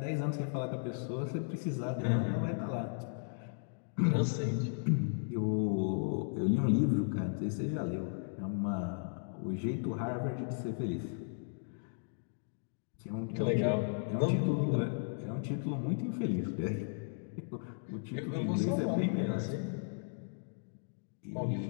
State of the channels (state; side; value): silent; right; digital silence